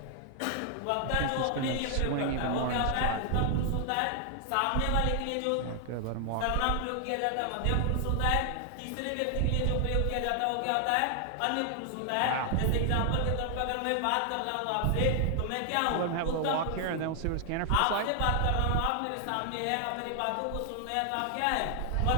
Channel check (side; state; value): both; different; correlation 0.00